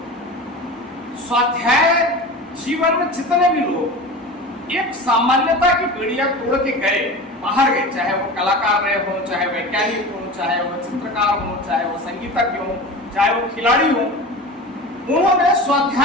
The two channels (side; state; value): both; normal; correlation 0.32